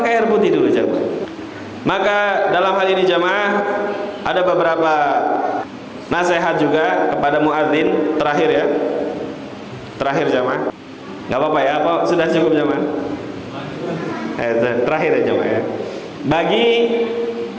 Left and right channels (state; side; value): identical; both; correlation 1.00